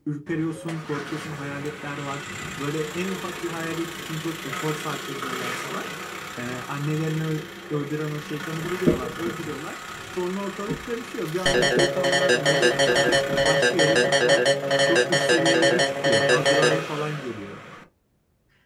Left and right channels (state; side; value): identical; both; correlation 1.00